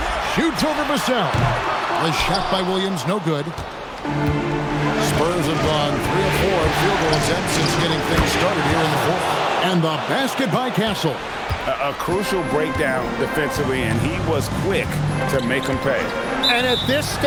Shoots over Vassell. The shot by Williams, no good. Spurs have gone 3 of 4 field goal attempts since getting things started here in the fourth. And the basket by Castle. A crucial breakdown defensively, and he was quick to make them pay. And at this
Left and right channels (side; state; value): both; identical; correlation 1.00